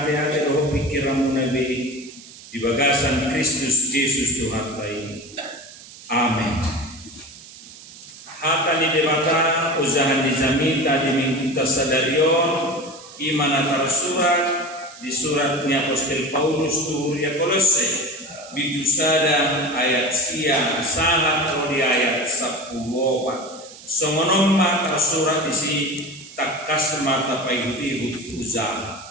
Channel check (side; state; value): right; noise; hiss, 18 dB below the sound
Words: roho pikiramu nabi di bagasan Kristus Yesus Tuhan bayi. Amin. Hata di debata usaha di zamita di minggu tasadarion imana tersurat di suratnya Apostol Paulus ya Kolose bidusada ayat siang sangat di ayat 10 songonomma tersurat isi takas mata paiti usaha